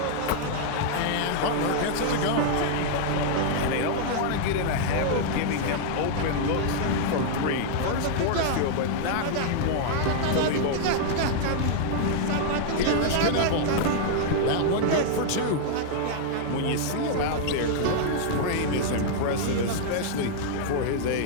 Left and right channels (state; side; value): different; both; correlation -0.01